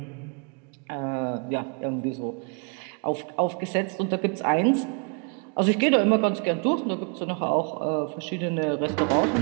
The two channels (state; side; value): quieter; left; 37.6 dB